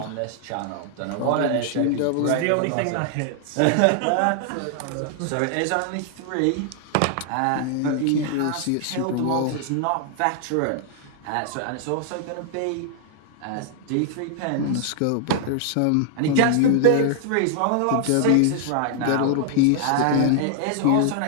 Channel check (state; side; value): different; both; correlation 0.00